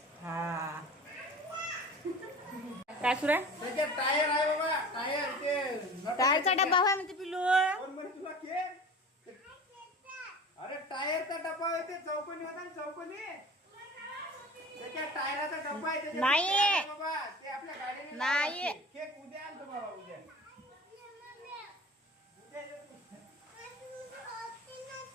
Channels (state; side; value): normal; both; correlation 0.39